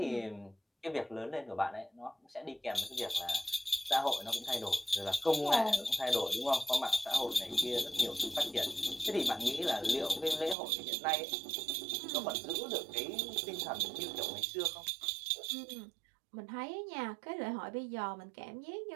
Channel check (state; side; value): drops out; left; at 10.6 s